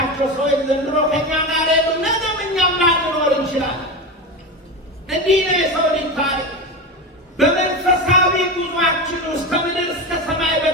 ሰዎች ዘንድሮ ከኛ ጋር የሉ። ነገም እኛም ላንኖር እንችላለን። እንዲህ ነው የሰው ልጅ ታሪክ። በመንፈሳዊ ጉዟችን ውስጥ ከምድር እስከ ሰማይ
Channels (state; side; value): normal; both; correlation 0.21